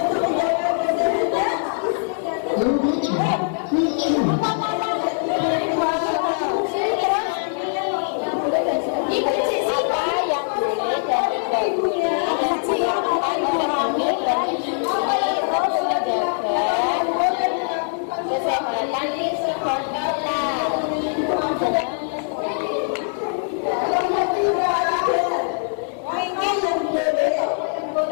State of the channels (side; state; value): right; silent; digital silence